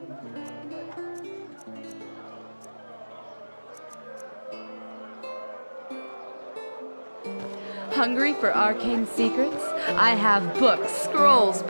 Hungry for arcane secrets? I have books, scrolls,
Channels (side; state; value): both; inverted; correlation -1.00